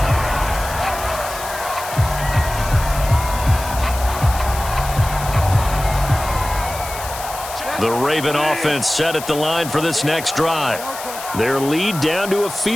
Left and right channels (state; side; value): noise; left; hiss, 11 dB below the sound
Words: The Raven offense set at the line for this next drive. Their lead down to a